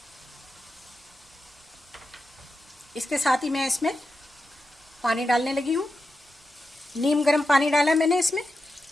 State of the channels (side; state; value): both; normal; correlation 0.90